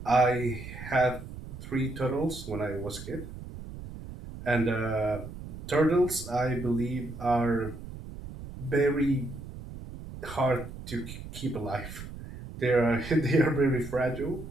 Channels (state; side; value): noise; right; rumble, 12 dB below the sound